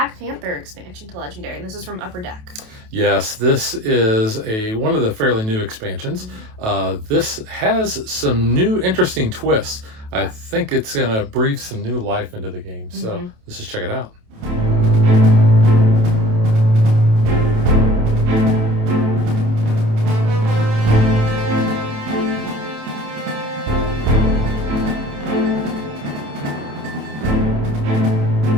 Panther expansion to Legendary, and this is from Upper Deck. Yes, this is one of the fairly new expansions. This has some new interesting twists. I think it's going to breathe some new life into the game. So let's just check it out.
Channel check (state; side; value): late; left; 28 ms